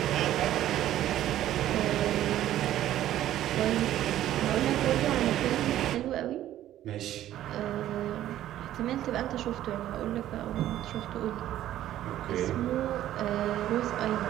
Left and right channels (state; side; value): quieter; left; 12.8 dB